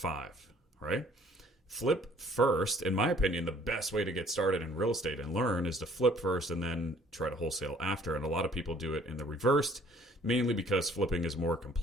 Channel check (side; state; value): both; normal; correlation 0.57